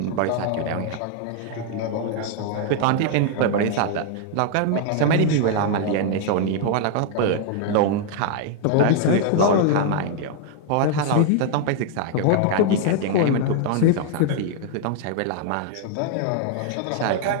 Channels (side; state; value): both; different; correlation 0.00